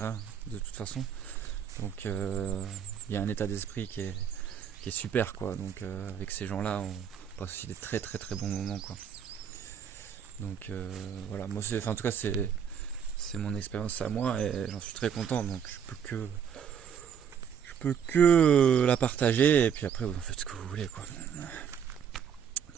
de toute façon, donc il y a un état d'esprit qui est super quoi. Donc avec ces gens là on passe aussi des très très très bons moments quoi. Donc voilà, moi en tout cas c'est mon expérience à moi et j'en suis très content, donc je peux que la partager et puis après vous en faites ce que vous voulez quoi.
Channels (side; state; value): left; quieter; 8.0 dB